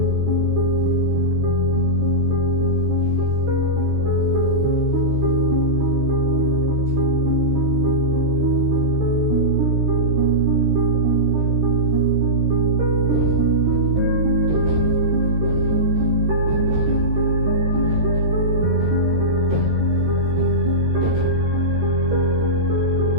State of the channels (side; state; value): left; late; 13 ms